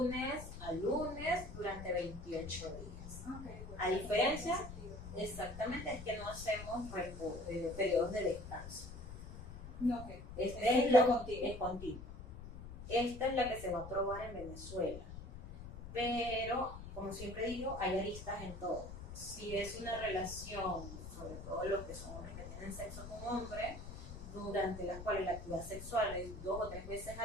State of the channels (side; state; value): left; noise; rumble, 11 dB below the sound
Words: a lunes durante 28 días. Okay, bueno, A diferencia, exactamente, es que no hacemos periodos de descanso. No, okay. Este es lo la contigo. es continuo. Esta es la que se va a probar en Venezuela. Pero, como siempre digo, hay aristas en todo. Si es una relación, sobre todo los que son hombres que tienen sexo con hombres, durante las cuales la actividad sexual es 2 o 3 veces